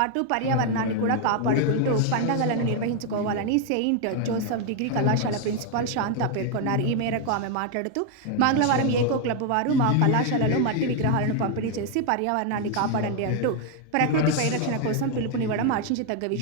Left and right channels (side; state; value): both; different; correlation 0.01